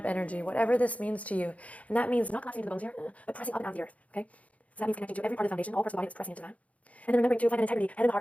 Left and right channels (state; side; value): late; right; 0.067 ms